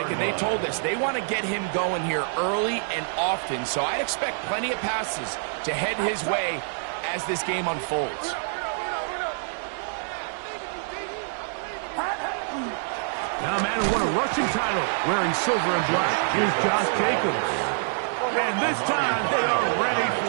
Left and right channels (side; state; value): left; silent; digital silence